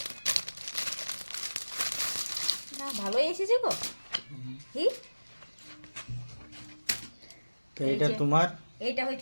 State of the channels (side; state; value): both; inverted; correlation -1.00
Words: না ভালোই এসেছে গো। কি তো এটা তোমার, এইটা